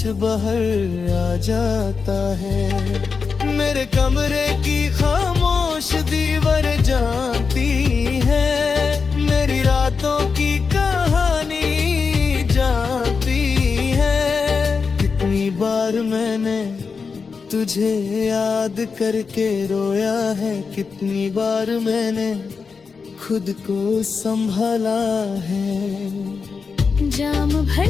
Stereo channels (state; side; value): quieter; right; 5.2 dB